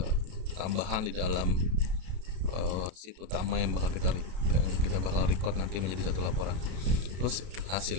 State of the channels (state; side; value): late; left; 32 ms